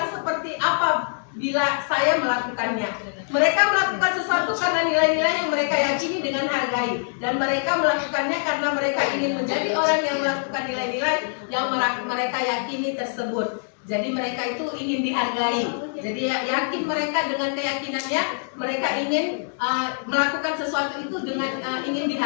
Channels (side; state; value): right; silent; digital silence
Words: seperti apa bila saya melakukannya. Mereka melakukan sesuatu karena nilai-nilai yang mereka yakini dengan hargai, dan mereka melakukannya karena mereka ingin menjadi orang yang melakukan nilai-nilai yang mereka yakini tersebut. Jadi mereka itu ingin dihargai. Jadi yakin mereka dengan keyakinannya, mereka ingin melakukan sesuatu itu dengan ingin